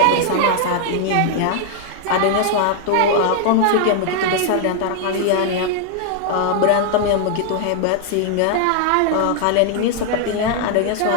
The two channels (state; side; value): different; both; correlation 0.00